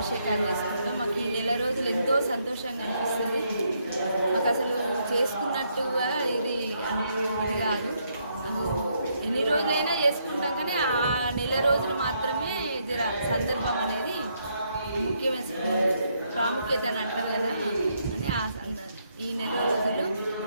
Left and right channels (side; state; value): both; inverted; correlation -0.75